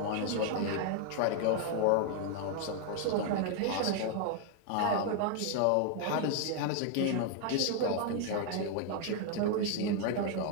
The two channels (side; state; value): both; different; correlation 0.00